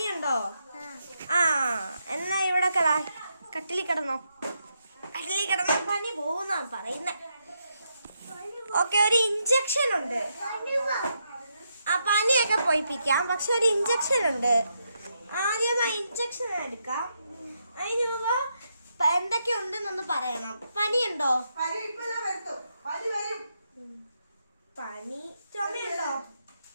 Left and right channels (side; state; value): both; inverted; correlation -0.81